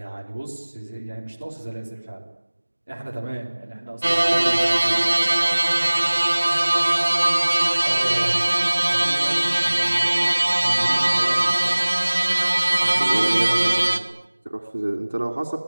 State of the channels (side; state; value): both; inverted; correlation -1.00